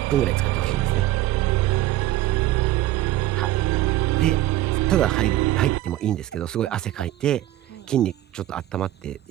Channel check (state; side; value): quieter; left; 14.8 dB